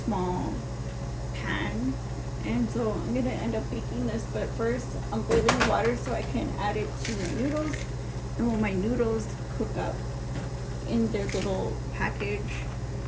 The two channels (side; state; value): both; identical; correlation 1.00